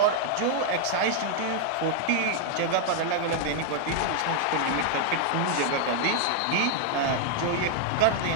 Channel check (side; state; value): both; different; correlation 0.00